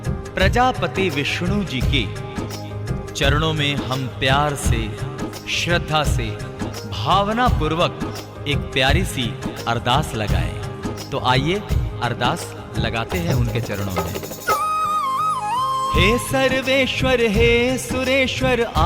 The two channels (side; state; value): both; identical; correlation 1.00